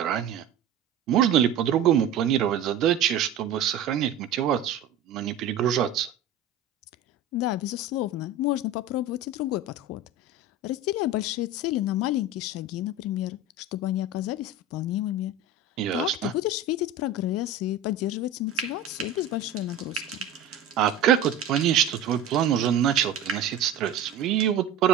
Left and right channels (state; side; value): quieter; left; 3.8 dB